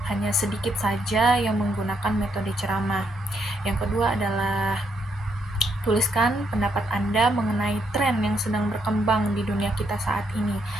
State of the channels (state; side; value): normal; both; correlation 0.75